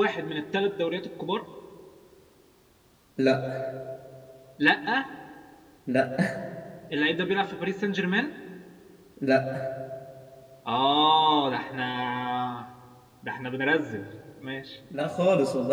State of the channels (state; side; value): identical; both; correlation 1.00